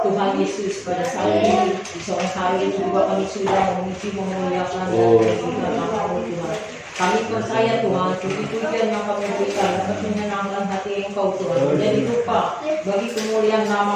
Tuhan Yesus pada saat ini di sore hari ini juga kami sudah memuji memuliakan dan meninggikan nama-Mu Tuhan. Kami percaya Tuhan, puji-pujian yang kami berikan dapat menyenangkan hati Engkau Tuhan, menjadi rupa bagi kemuliaan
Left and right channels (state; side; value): identical; both; correlation 1.00